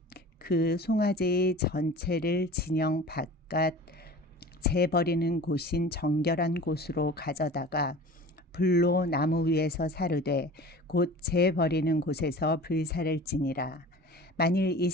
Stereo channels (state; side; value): normal; both; correlation 0.39